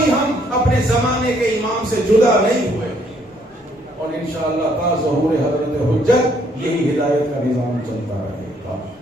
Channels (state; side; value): normal; both; correlation 0.67